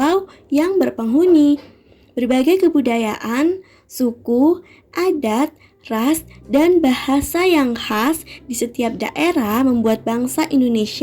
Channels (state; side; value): identical; both; correlation 1.00